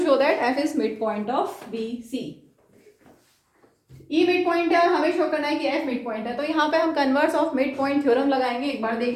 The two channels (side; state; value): both; identical; correlation 1.00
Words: show that F is mid point of BC. E mid point है, हमें शो करना है कि F मिड पॉइंट है. तो यहाँ पे हम converse of mid point theorem लगाएंगे. एक बार